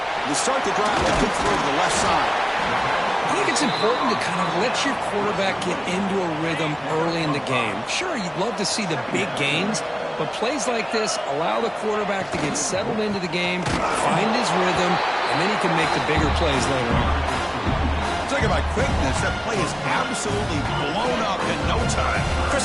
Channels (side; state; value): both; identical; correlation 1.00